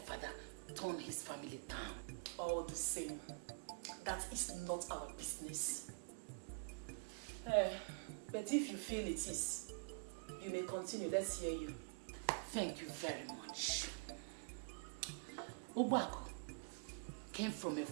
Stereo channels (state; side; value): quieter; left; 35.5 dB